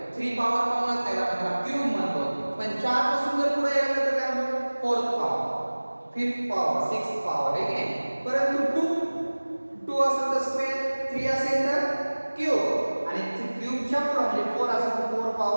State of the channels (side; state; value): both; inverted; correlation -1.00